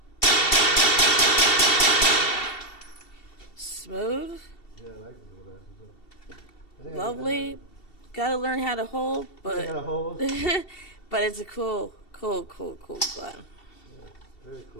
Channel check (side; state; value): right; late; 2.7 ms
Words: Smooth. Yeah, I like the little bastards. Lovely. Gotta learn how to hold, but Gotta hold. but it's a cool gun. Yeah, very